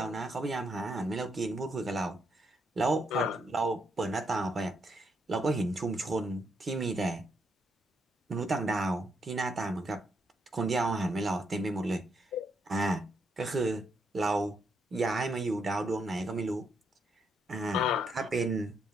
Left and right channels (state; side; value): normal; both; correlation 0.77